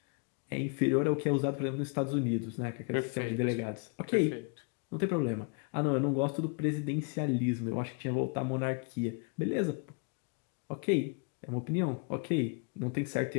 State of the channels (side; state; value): right; quieter; 37.7 dB